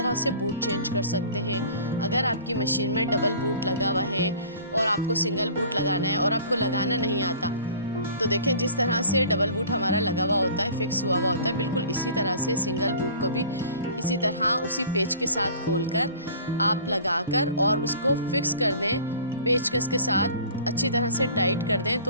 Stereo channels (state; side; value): inverted; both; correlation -0.46